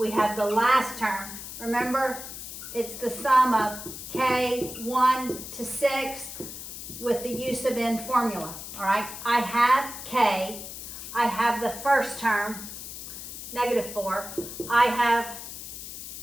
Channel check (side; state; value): left; noise; hiss, 10 dB below the sound